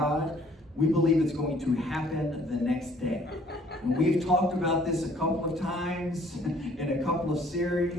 we believe it's going to happen the next day. And we've talked about this a couple of times in a couple of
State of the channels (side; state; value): both; normal; correlation 0.59